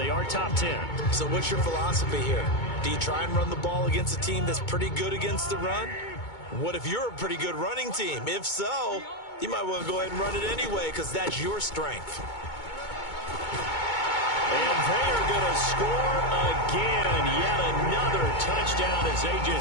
are top 10. So what's your philosophy here? Do you try and run the ball against a team that's pretty good against the run? What if you're a pretty good running team? If so, you might want to go ahead and run it anyway because that's your strength. And they are going to score again. Yet another touchdown as they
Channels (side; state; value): right; late; 2.2 ms